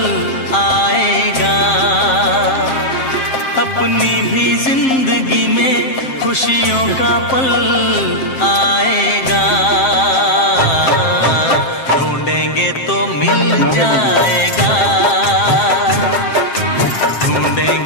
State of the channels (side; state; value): right; late; 7.5 ms